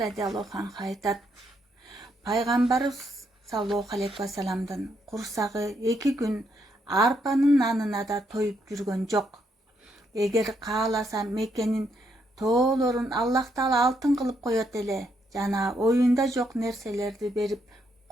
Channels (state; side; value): normal; both; correlation 0.76